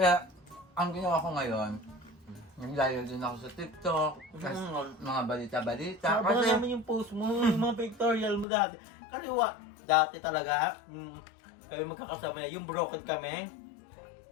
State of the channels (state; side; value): drops out; right; at 8.5 s